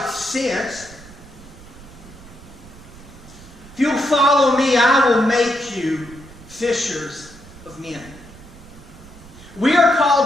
sense. If you'll follow me, I will make you fishers of men. We are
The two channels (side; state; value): right; noise; rumble, 20 dB below the sound